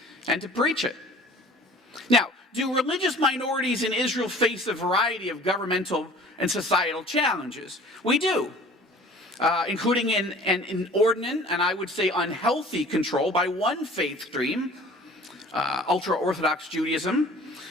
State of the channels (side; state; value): both; normal; correlation 0.48